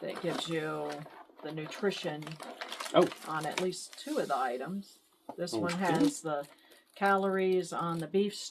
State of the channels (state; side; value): identical; both; correlation 1.00